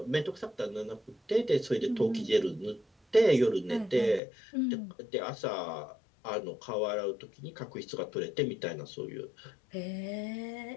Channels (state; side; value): drops out; right; at 4.2 s